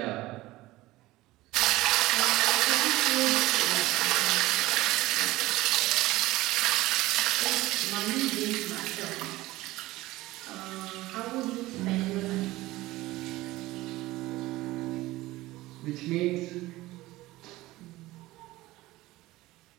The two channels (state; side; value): quieter; left; 18.2 dB